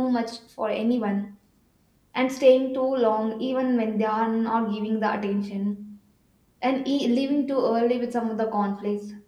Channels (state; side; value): identical; both; correlation 1.00